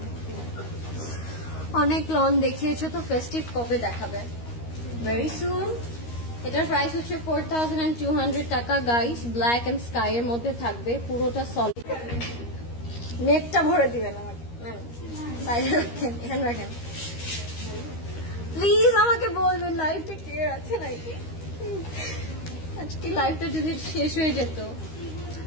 অনেক লন দেখিয়েছো তো ফেস্টিভ কবে দেখাবে? Very soon. এটার প্রাইস হচ্ছে 4,200 টাকা গাইস। ব্ল্যাক এন্ড স্কাই এর মধ্যে থাকবে, পুরোটা সলিড। নেকটা ভরে দিবেন আমাকে, সাইডে রাখেন, এখানে রাখেন প্লিজ। আমাকে বলবেন লাইভটা ক্লিয়ার আছে নাকি। আজকে লাইভটা যদি শেষ হয়ে যেত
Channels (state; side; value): late; right; 13 ms